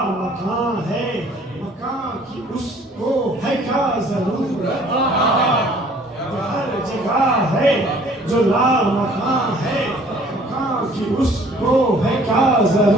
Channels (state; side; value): normal; both; correlation 0.55